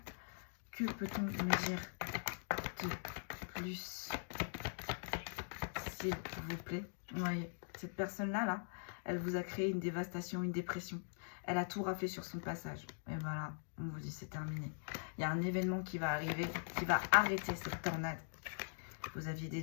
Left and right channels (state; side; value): silent; right; digital silence